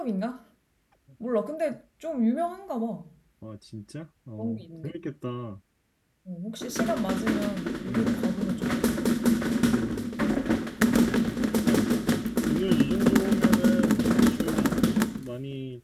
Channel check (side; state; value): both; identical; correlation 1.00